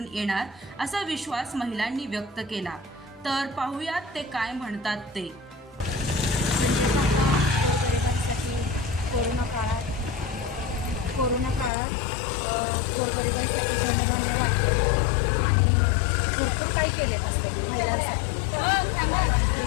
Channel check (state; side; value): drops out; right; at 11.7 s